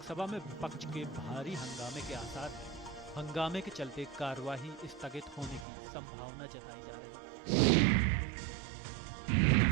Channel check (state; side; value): drops out; left; at 5.7 s